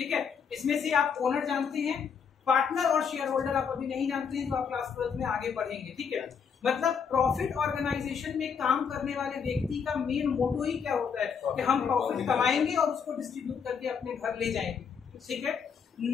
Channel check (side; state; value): right; quieter; 6.6 dB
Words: है, इसमें से आप ओनर जानते हैं, पार्टनर और शेयर होल्डर आप अभी नहीं जानते हैं, जो आप क्लास 12 में आगे पढ़ेंगे। ठीक है, मतलब प्रॉफिट ऑर्गेनाइजेशन में काम करने वाले व्यक्ति का मेन मोटो ही क्या होता है कि हम प्रॉफिट कमाएंगे और उसको डिस्ट्रीब्यूट करके अपने घर ले जाएंगे। ठीक है,